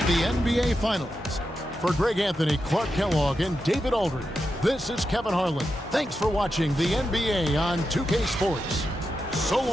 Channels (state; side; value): normal; both; correlation 0.88